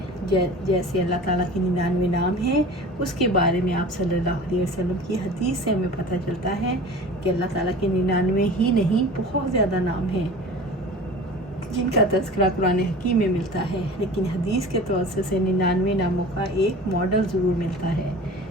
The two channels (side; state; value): both; normal; correlation 0.39